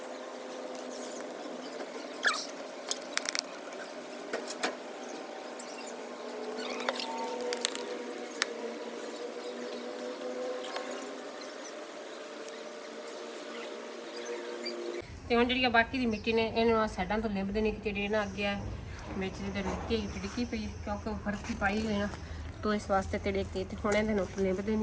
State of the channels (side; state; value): both; identical; correlation 1.00